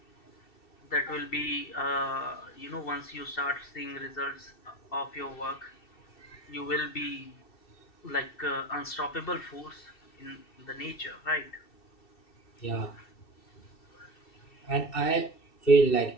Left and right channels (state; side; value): late; right; 2.7 ms